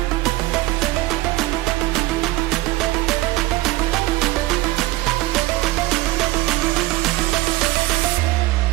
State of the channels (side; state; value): left; quieter; 18.4 dB